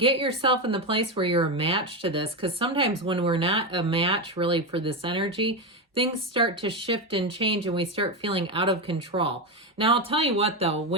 yourself in the place where you're a match to this, because sometimes when we're not a match really for this energy, things start to shift and change and we start feeling out of control. Now, I'll tell you what, though,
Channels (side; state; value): both; normal; correlation 0.13